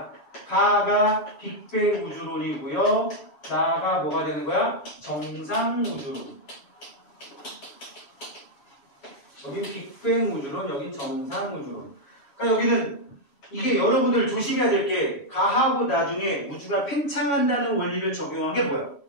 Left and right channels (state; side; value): late; right; 3.1 ms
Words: 가가 빅뱅 우주론이고요. 나가 뭐가 되는 거야? 정상우주론. 여기 빅뱅 우주론, 여기 정상우주론. 그러니까 여기는 이게 여러분들 조심해야 될 게 가하고 나중에 우주가 팽창한다는 원리를 적용한 게 뭐야?